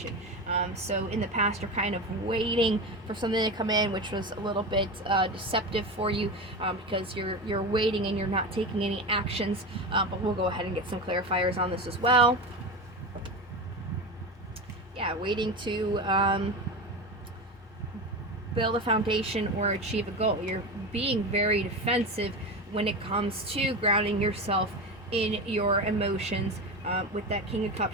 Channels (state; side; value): normal; both; correlation 0.23